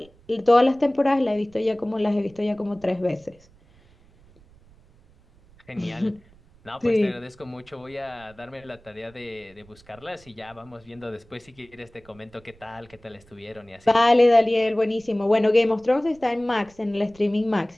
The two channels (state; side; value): noise; right; rumble, 28 dB below the sound